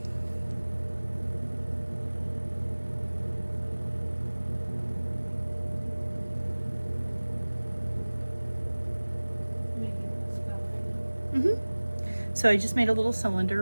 So I just made a little cylinder,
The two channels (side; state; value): both; inverted; correlation -1.00